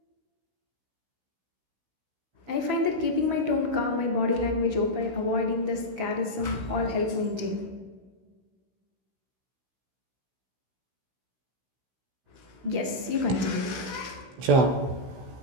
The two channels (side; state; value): left; late; 16 ms